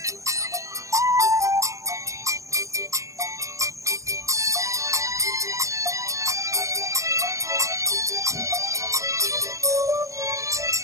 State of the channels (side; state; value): left; late; 0.15 ms